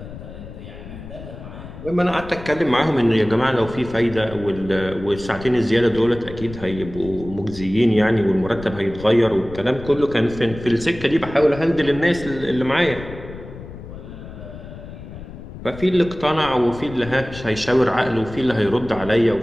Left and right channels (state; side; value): noise; left; rumble, 13 dB below the sound